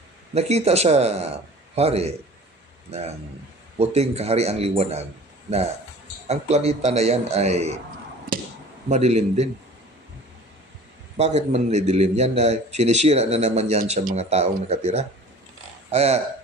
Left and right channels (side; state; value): both; normal; correlation 0.44